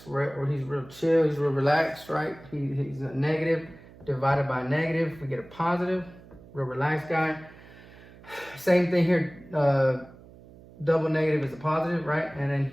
right? Or he's real chill, he's real relaxed, right? He's a negative divided by a negative. We get a positive, real relaxed guy. Same thing here, double negative is a positive, right? And then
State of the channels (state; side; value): noise; right; hum, 21 dB below the sound